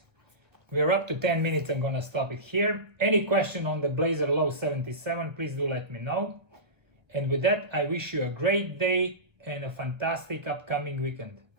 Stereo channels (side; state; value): left; late; 1.4 ms